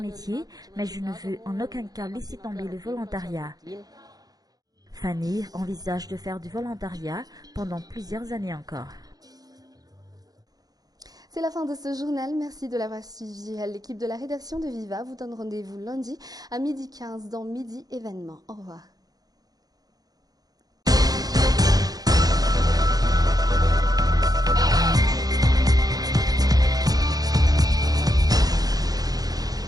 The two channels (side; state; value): left; late; 0.18 ms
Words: mais je ne veux en aucun cas laisser tomber le volontariat. Fanny envisage de faire du volontariat pendant plusieurs années encore. C'est la fin de ce journal. Merci de l'avoir suivi. L'équipe de la rédaction de Viva vous donne rendez-vous lundi à 12h15 dans Midi Événement. Au revoir.